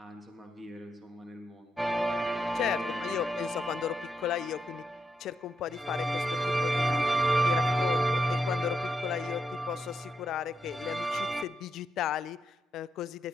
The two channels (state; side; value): normal; both; correlation 0.83